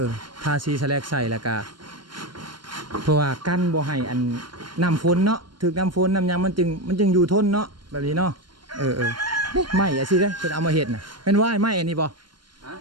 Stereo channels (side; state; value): left; late; 0.72 ms